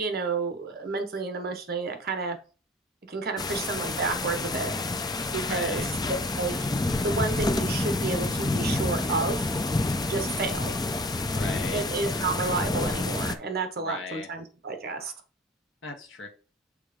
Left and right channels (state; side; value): normal; both; correlation 0.43